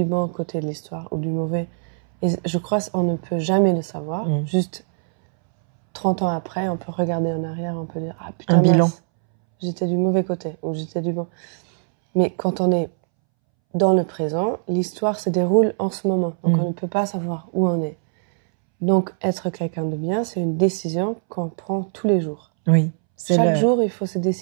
bon côté de l'histoire ou du mauvais? Et je crois qu'on ne peut jamais le savoir. Juste 30 ans après, on peut regarder en arrière, on peut dire « Ah putain, un bilan. J'étais du mauvais côté ou j'étais du bon. » Mais quand on est dans le présent, l'histoire se déroule en ce moment. Donc on ne peut pas savoir où on est. Donc être quelqu'un de bien, c'est une décision qu'on prend tous les jours. Oui. Chaque jour, il faut se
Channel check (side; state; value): left; silent; 64 dB below the other